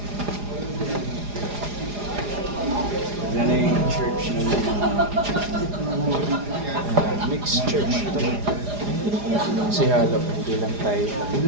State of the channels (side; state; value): left; late; 4.9 ms